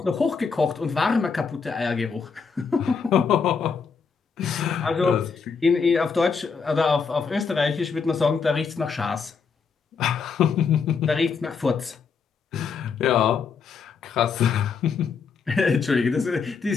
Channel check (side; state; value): right; quieter; 5.6 dB